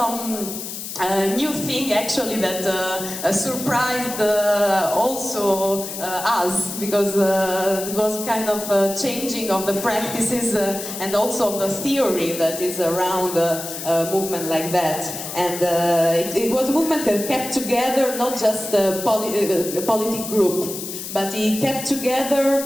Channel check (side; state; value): left; noise; hiss, 8 dB below the sound